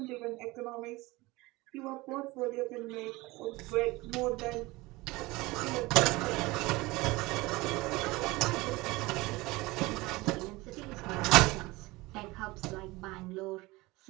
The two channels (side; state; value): left; quieter; 21.5 dB